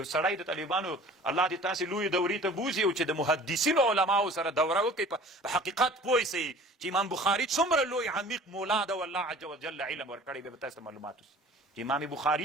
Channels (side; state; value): both; normal; correlation 0.46